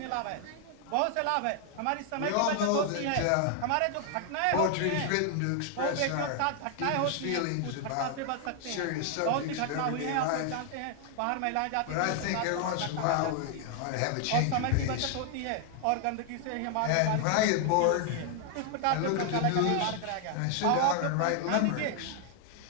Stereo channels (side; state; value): both; different; correlation 0.00